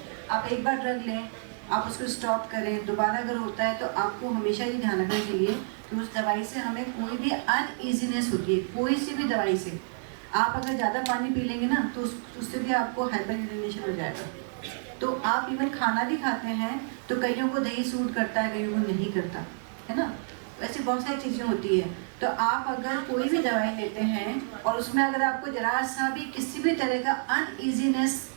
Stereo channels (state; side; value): silent; left; digital silence